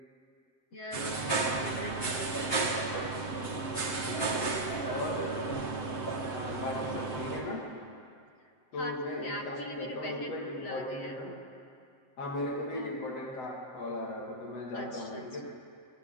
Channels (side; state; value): right; late; 7.6 ms